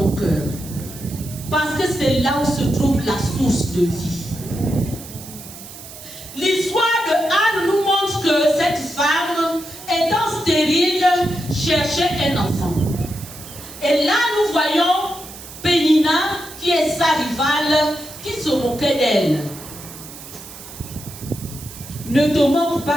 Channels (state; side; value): noise; right; hiss, 15 dB below the sound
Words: cœur. Parce que c'est là où se trouve la source de vie. L'histoire de Anne nous montre que cette femme, étant stérile, cherchait un enfant. Et là, nous voyons Pénina, qui est sa rivale, qui se moquait d'elle. Ne te moque